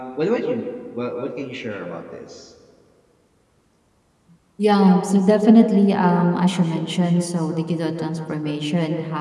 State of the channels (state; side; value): identical; both; correlation 1.00